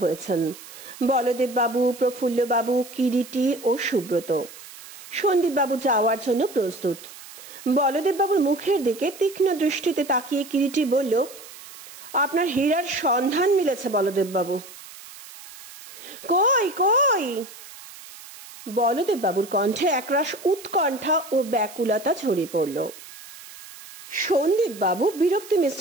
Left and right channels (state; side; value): noise; right; hiss, 17 dB below the sound